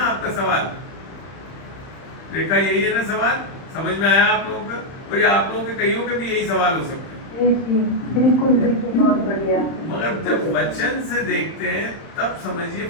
आपका सवाल रेखा, यही है ना सवाल? समझ में आया आप लोगों का? और ये आप लोगों के कईयों के भी यही सवाल हो सकते हैं। बिल्कुल बिल्कुल, बहुत बढ़िया। मगर जब वचन से देखते हैं तब समझिए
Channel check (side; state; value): right; late; 31 ms